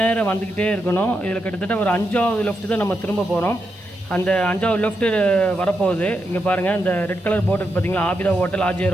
வந்துக்கிட்டே இருக்கணும். இதில் கிட்டத்தட்ட ஒரு 5வது லெஃப்ட்டு தான் நம்ம திரும்ப போகிறோம். அந்த 5வது லெஃப்ட்டு வரப்போகுது. இங்கே பாருங்கள், இந்த ரெட் கலர் போர்டு பார்த்தீங்களா, ஆபிதா ஹோட்டல்,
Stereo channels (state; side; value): normal; both; correlation 0.85